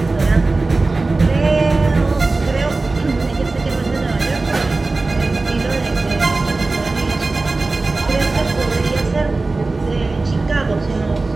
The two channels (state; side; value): quieter; left; 3.4 dB